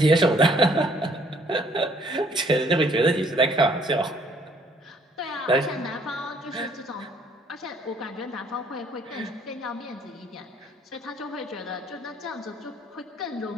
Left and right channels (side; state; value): both; normal; correlation 0.62